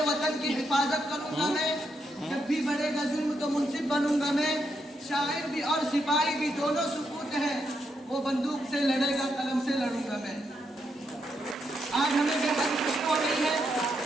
वतन की हिफाजत करूंगा मैं, जब भी बढ़ेगा जुल्म तो मुंसिफ बनूंगा मैं। शायर भी और सिपाही भी दोनों सुकूत है, वो बंदूक से लड़ेगा कलम से लड़ूंगा मैं। आज हमें बेहद खुशी हो रही है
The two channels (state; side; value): normal; both; correlation 0.80